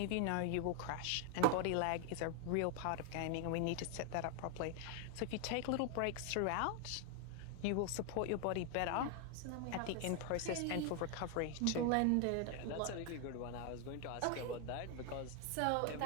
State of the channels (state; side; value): different; both; correlation 0.00